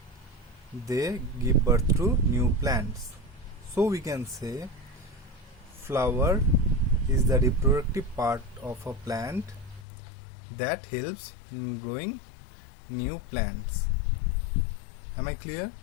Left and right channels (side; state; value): right; drops out; at 9.9 s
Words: they give birth to new plants. So we can say flower is the reproductive part of a plant that helps in growing new plants. Am I clear?